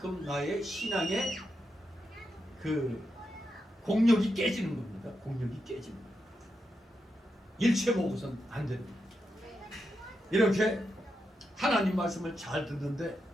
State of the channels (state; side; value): normal; both; correlation 0.85